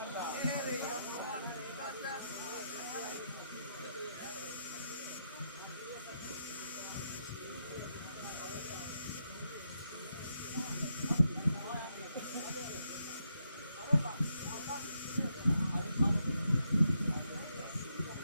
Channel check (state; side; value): inverted; both; correlation -0.80